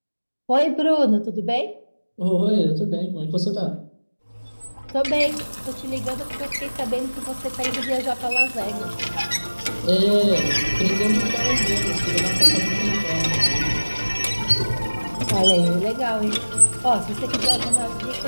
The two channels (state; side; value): inverted; both; correlation -1.00